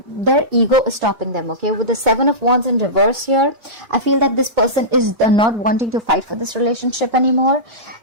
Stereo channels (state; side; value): late; left; 2.2 ms